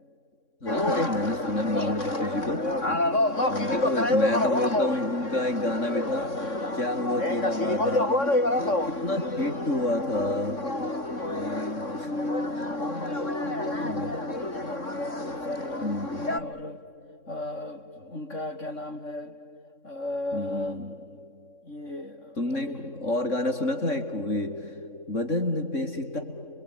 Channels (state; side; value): late; right; 3.6 ms